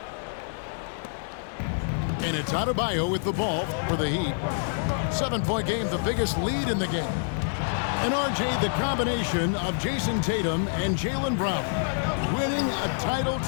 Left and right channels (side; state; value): right; silent; 60 dB below the other